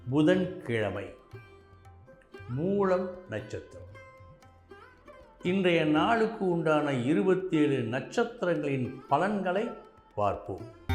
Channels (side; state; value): both; identical; correlation 1.00